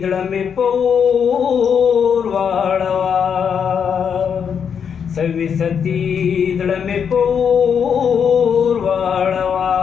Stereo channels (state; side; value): quieter; right; 7.2 dB